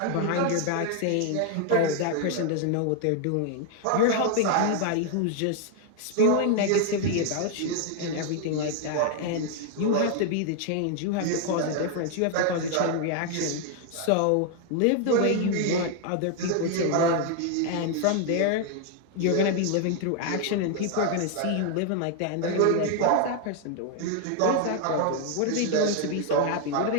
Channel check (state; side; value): different; both; correlation 0.00